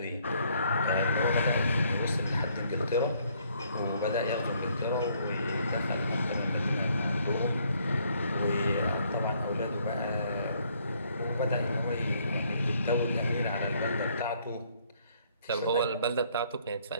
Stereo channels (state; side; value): inverted; both; correlation -0.67